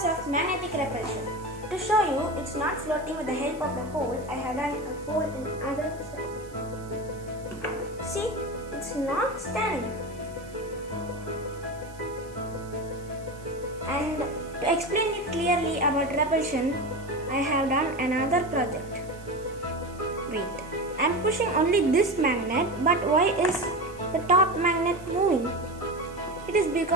of magnetic repulsion. To show you, it's not floating with the help of the hole. I have done a hole in other side. See, it's not standing. And to explain it clearly about repulsion, I have done another project. Wait, I'm pushing only this magnet, but why is the top magnet moving? It is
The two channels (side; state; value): right; noise; hiss, 24 dB below the sound